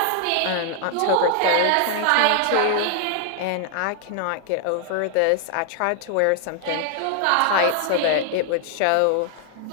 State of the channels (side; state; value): both; different; correlation 0.00